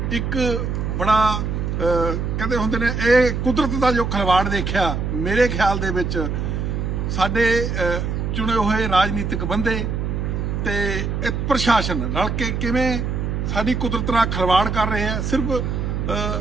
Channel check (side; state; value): right; noise; hum, 1 dB below the sound